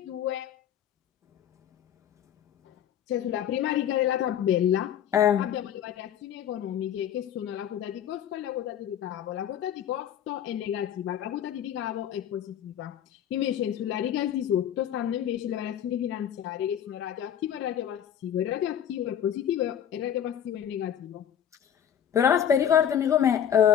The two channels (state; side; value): quieter; right; 9.6 dB